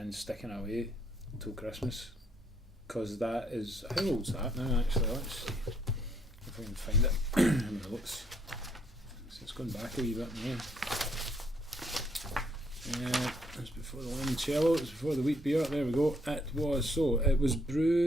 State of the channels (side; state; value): both; normal; correlation 0.69